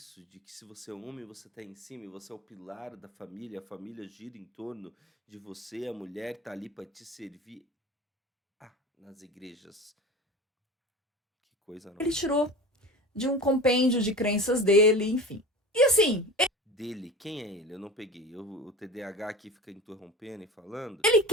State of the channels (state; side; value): normal; both; correlation 0.33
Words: de que se você é homem, você tá em cima e você é o pilar da família, a família gira em torno de você, a mulher tá ali pra te servir? Ah, nas igrejas. Que coisa, não? Ele tirou de um compêndio de crenças dele, enfim. E assim, Dele, quem é ele? Eu não peguei. O TDAH aqui fica interrompendo e falando. ele